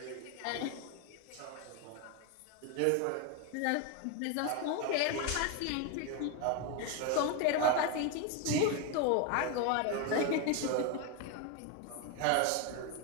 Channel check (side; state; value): both; different; correlation 0.01